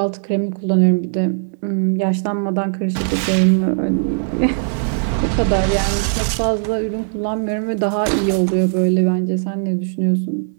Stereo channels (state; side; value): silent; left; digital silence